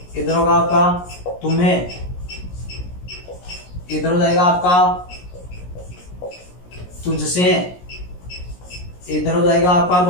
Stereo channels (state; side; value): late; right; 17 ms